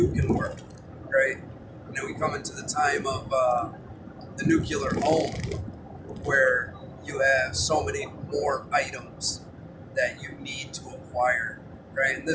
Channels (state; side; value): identical; both; correlation 1.00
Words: can work, right? You know, we come into the time of the nuclear home, where you have so many more items that you need to acquire, right? And